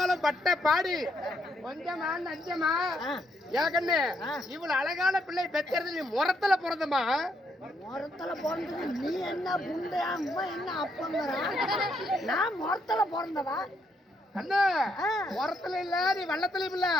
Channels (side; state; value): both; normal; correlation 0.75